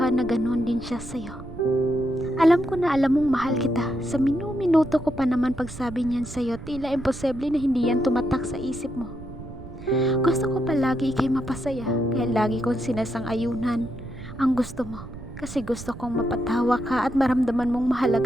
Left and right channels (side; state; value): right; noise; rumble, 13 dB below the sound